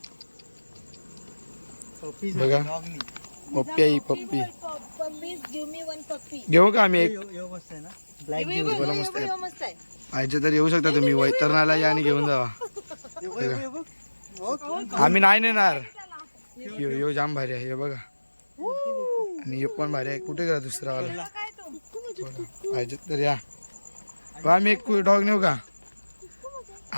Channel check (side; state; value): both; inverted; correlation -1.00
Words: बघा पप्पी आहे. पप्पी घेऊ का आम्ही एक? मस्त आहे. पाहिजे तर येऊ शकता तुम्ही. वैतरणाला या आणि घेऊन जावा. आम्ही नाही नेणार. यो जाम भारी आहे. हे बघा आणि यो पण भारी आहे. कुठे गेला दुसरा वाला? पाहिजे तर या. आम्ही एक डॉग नेऊ का?